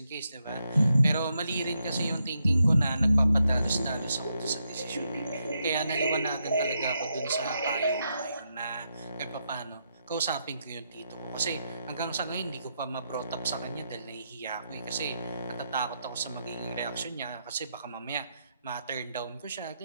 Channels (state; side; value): inverted; both; correlation -0.82